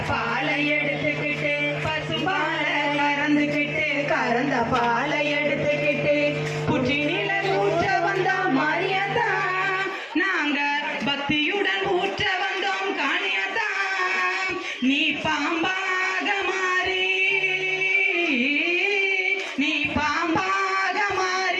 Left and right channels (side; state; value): both; identical; correlation 1.00